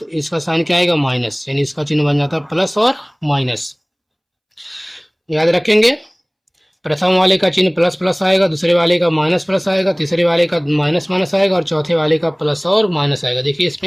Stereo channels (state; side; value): identical; both; correlation 1.00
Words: इसका साइन क्या आएगा? माइनस, यानी इसका चिन्ह बन जाता है प्लस और माइनस। याद रखेंगे, प्रथम वाले का चिन्ह प्लस प्लस आएगा, दूसरे वाले का माइनस प्लस आएगा, तीसरे वाले का माइनस माइनस आएगा, और चौथे वाले का प्लस और माइनस आएगा। देखिए